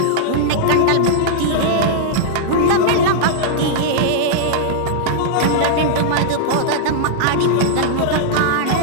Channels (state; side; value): different; both; correlation -0.02